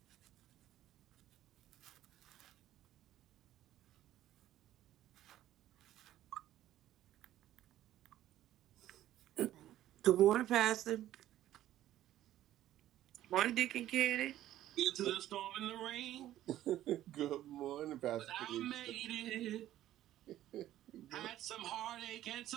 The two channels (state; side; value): quieter; left; 13.3 dB